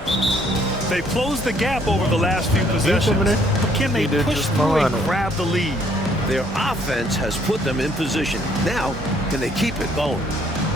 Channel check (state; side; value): normal; both; correlation 0.65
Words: They've closed the gap over the last few possessions, but can they push through and grab the lead? Their offense has put them in position. Now, can they keep it going?